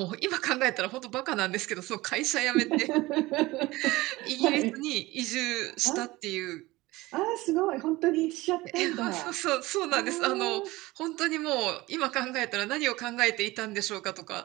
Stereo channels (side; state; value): left; quieter; 19.9 dB